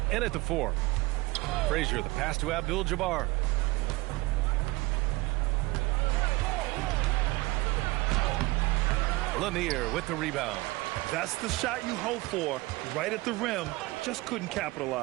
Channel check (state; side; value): quieter; left; 21.9 dB